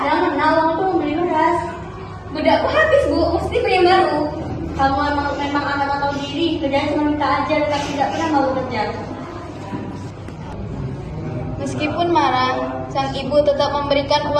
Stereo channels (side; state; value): both; identical; correlation 1.00